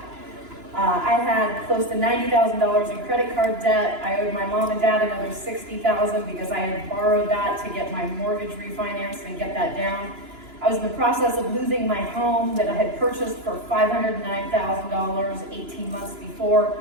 I had close to $90,000 in credit card debt. I owed my mom and dad another $60,000 because I had borrowed that to get my mortgage refinanced and get that down. I was in the process of losing my home that I had purchased for $509,000 18 months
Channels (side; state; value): left; late; 2.9 ms